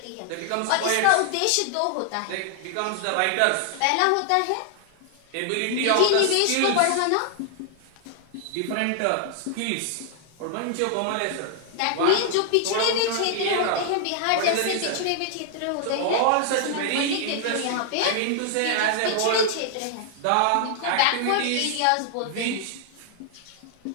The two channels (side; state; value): both; different; correlation 0.00